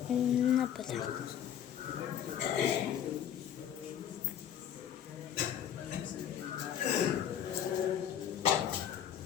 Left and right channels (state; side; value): quieter; right; 9.7 dB